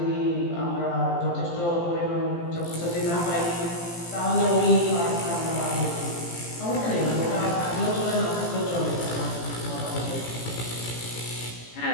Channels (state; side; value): late; right; 17 ms